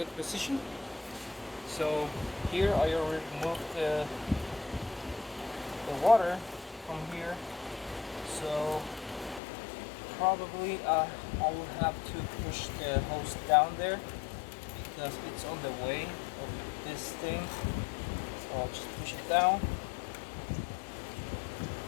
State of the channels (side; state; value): right; drops out; at 9.4 s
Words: position. So here I already removed the water from here, so probably I will have to push the hose down there because it's on the way of this thing. So I'll just push it down